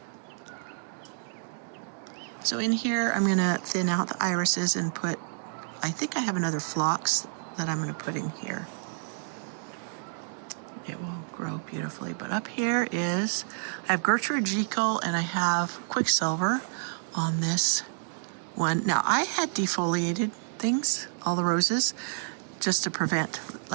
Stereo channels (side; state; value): left; silent; digital silence